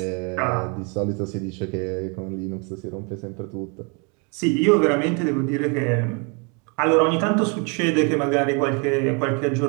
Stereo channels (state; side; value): quieter; left; 34.0 dB